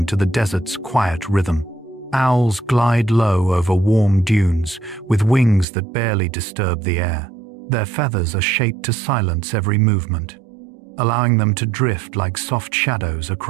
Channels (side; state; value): left; drops out; at 5.7 s